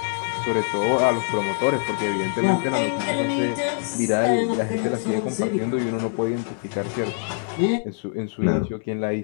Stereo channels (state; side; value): silent; right; digital silence